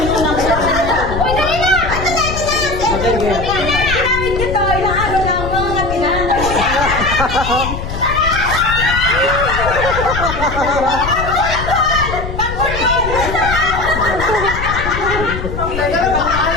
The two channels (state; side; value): noise; left; rumble, 6 dB below the sound